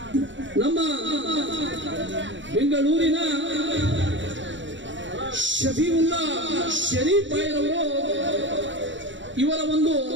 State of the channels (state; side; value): late; left; 0.54 ms